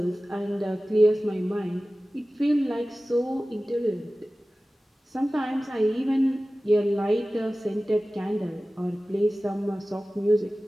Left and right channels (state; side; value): normal; both; correlation 0.97